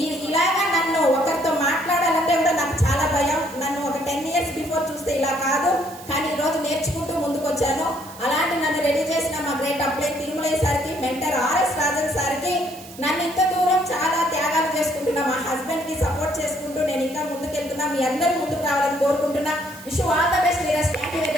ఇలాగా నన్ను ఒకరితో మాట్లాడాలంటే కూడా నాకు చాలా భయం. నన్ను ఒక 10 years బిఫోర్ చూస్తే ఇలా కాదు, కానీ ఈ రోజు నేర్చుకుంటూ ముందుకు వచ్చాను. అలాంటి నన్ను రెడీ చేసిన మా గ్రేట్ అప్లైన్ తిరుమలయ్య సార్కి, మెంటర్ ఆర్ఎస్ రాజన్ సార్కి, నన్ను ఇంత దూరం చాలా త్యాగాలు చేసుకుంటున్నా, మా హస్బెండ్ కి సపోర్ట్ చేసుకుంటూ నేను ఇంకా ముందుకు వెళ్తున్నా. మీ అందరూ ముందుకు రావాలని కోరుకుంటున్నా. Wish you all the best leaders. Thank you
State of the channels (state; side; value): noise; right; hiss, 18 dB below the sound